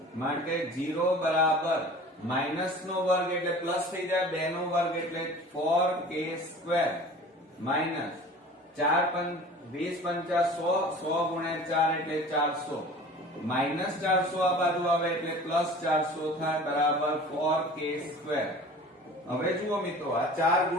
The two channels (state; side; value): normal; both; correlation 0.42